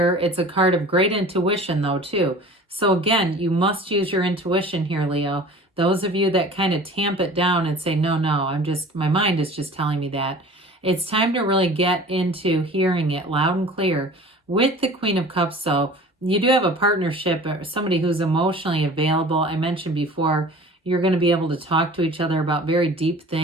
It's a card of great intuition though too. So again, you must use your intuition here, Leo. Those of you that kind of tamp it down and say, no, my mind is just telling me that. It's time to really get into hearing it loud and clear. With the Queen of Cups, though, you do have a partnership or somebody who's emotionally available. I mentioned before, you're going to be able to talk to each other about very deep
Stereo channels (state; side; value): normal; both; correlation 0.43